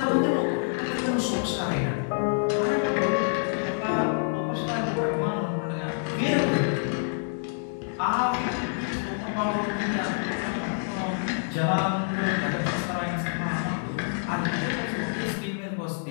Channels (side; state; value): right; silent; 59 dB below the other